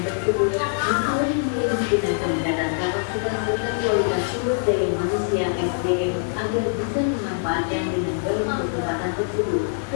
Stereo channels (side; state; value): right; silent; digital silence